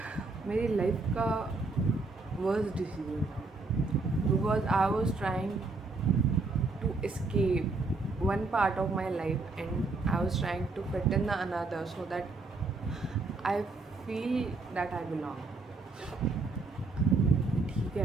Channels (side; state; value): left; quieter; 3.7 dB